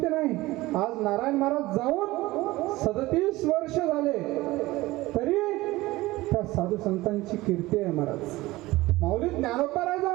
नाही. आज नारायण महाराज जाऊन 37 वर्ष झाले तरी त्या साधू संतांची कीर्ती आहे महाराज. माऊली ज्ञानोबा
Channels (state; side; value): quieter; left; 19.0 dB